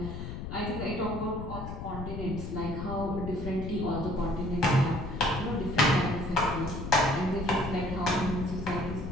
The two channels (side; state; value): left; noise; rumble, 7 dB below the sound